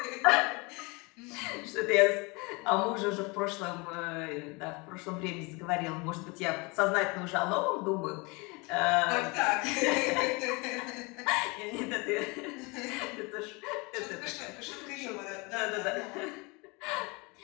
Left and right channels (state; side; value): quieter; right; 27.8 dB